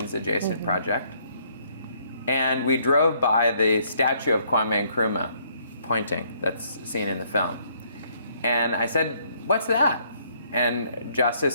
adjacent project. And we drove by the statue of Kwame Nkrumah pointing, that's seen in the film. And I said, "What's that?" And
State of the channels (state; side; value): inverted; both; correlation -0.67